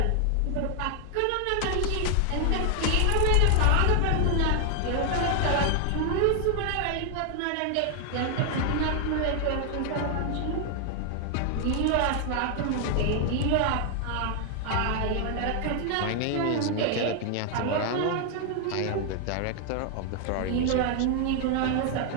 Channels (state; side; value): different; both; correlation 0.00